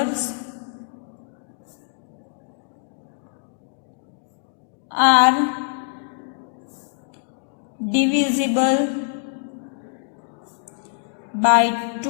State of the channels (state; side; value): silent; right; digital silence